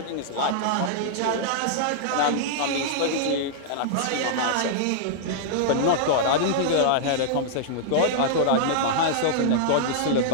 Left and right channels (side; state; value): both; different; correlation -0.02